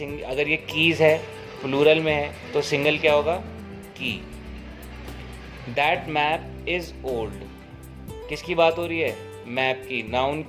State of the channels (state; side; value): identical; both; correlation 1.00